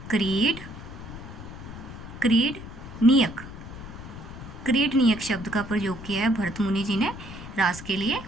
नियक शब्द का प्रयोग किया है भरत मुनि जी ने रास के लिए।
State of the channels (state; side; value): noise; left; rumble, 13 dB below the sound